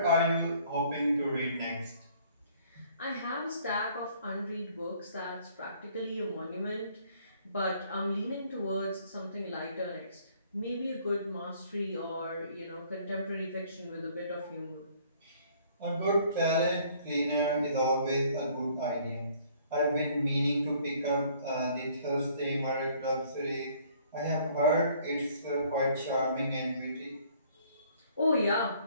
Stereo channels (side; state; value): both; inverted; correlation -0.59